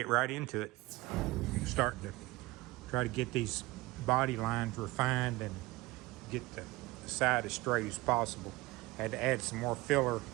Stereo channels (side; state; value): left; quieter; 20.7 dB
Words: right into it. I'm starting to try to get these body lines refined and get the side as straight as possible. Had to add some more filler